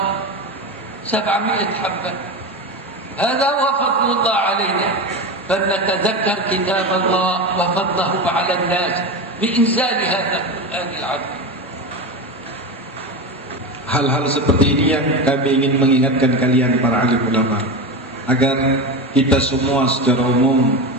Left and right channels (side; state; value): both; normal; correlation 0.21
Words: 700 حبة. هذا هو فضل الله علينا، فلنتذكر كتاب الله وفضله على الناس بإنزال هذا القرآن العظيم. Hal-hal seperti ini yang kami ingin mengingatkan kalian para alim ulama, agar kita semua secara umum